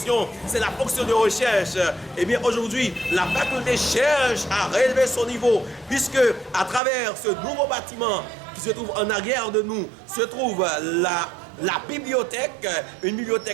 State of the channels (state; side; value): drops out; left; at 6.8 s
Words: c'est la fonction de recherche. Et bien aujourd'hui, la faculté cherche à relever son niveau, puisque à travers ce nouveau bâtiment qui se trouve en arrière de nous, se trouve la bibliothèque, une